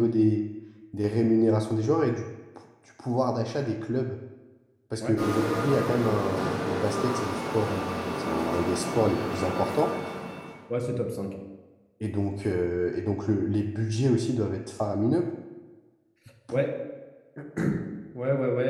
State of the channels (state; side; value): identical; both; correlation 1.00